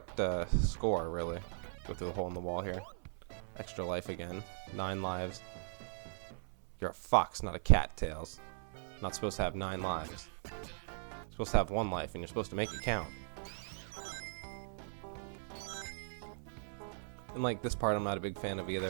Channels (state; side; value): silent; left; 52 dB below the other